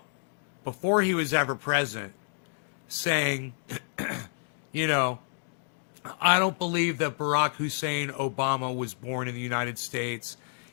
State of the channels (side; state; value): right; silent; digital silence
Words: before he was ever president, saying, I don't believe that Barack Hussein Obama was born in the United States.